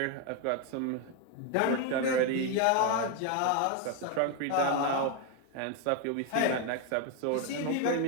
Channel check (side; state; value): both; different; correlation 0.01